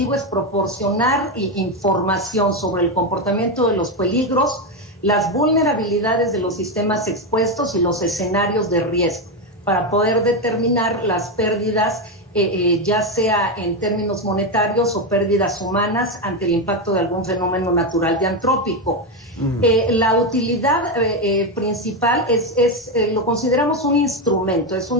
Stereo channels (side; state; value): both; normal; correlation 0.10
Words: es proporcionar información sobre el comportamiento de los peligros, las vulnerabilidades de los sistemas expuestos y los escenarios de riesgo, para poder determinar las pérdidas, ya sea en términos monetarios o pérdidas humanas ante el impacto de algún fenómeno natural y antrópico. La utilidad principal lo consideramos un instrumento,